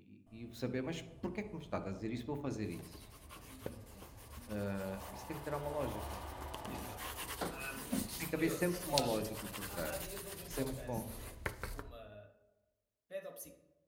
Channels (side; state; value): both; identical; correlation 1.00